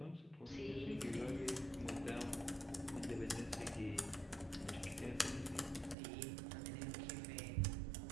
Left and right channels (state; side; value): drops out; left; at 6.0 s